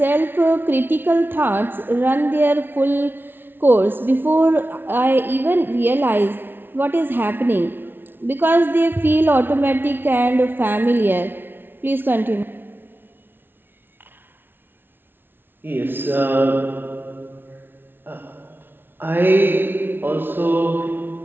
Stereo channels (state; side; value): late; left; 0.10 ms